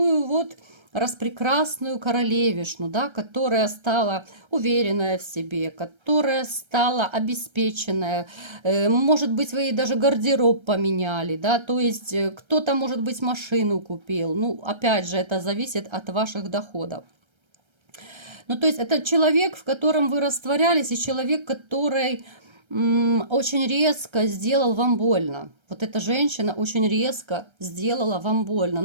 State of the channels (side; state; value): left; late; 1.3 ms